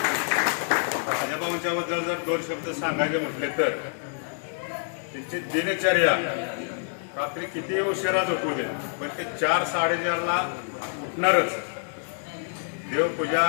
राजाभाऊंच्या बद्दल जर 2 शब्द सांगायचे म्हटले तर त्यांची दिनचर्या रात्री किती उशिरा झोपू दे पण ते 4-4:30 ला उठणारच, देवपूजा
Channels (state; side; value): silent; right; digital silence